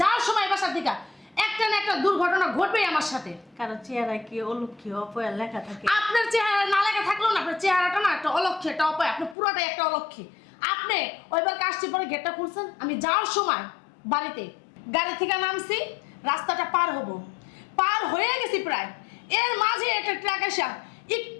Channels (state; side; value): drops out; right; at 9.3 s